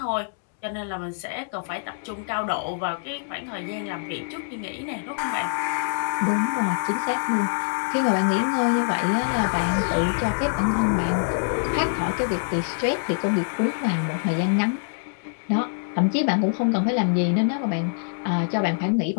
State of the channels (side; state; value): right; silent; digital silence